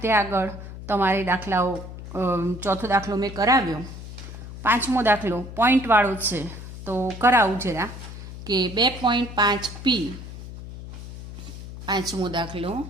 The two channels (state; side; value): noise; left; hum, 12 dB below the sound